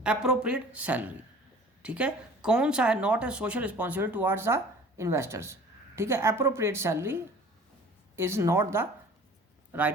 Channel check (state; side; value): normal; both; correlation 0.46